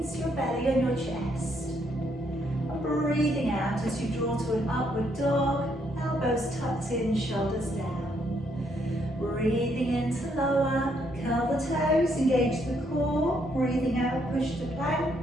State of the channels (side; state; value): both; normal; correlation 0.72